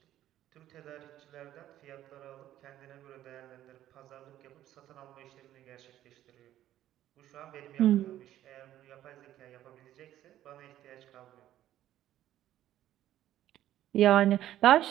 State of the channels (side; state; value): left; quieter; 12.8 dB